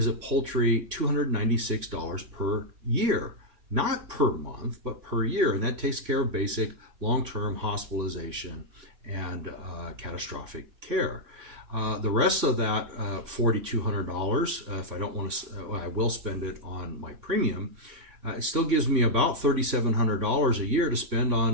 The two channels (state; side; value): late; left; 3.5 ms